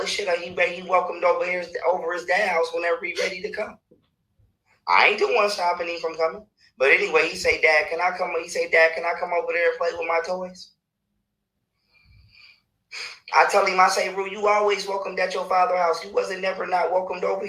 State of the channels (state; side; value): identical; both; correlation 1.00